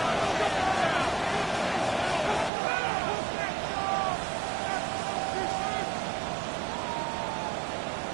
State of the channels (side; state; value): left; drops out; at 2.5 s